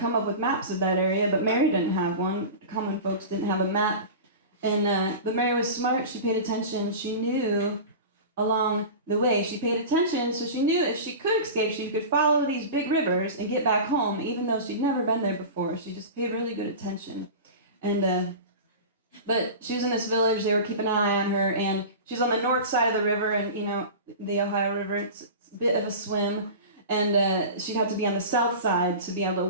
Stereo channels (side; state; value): both; inverted; correlation -0.31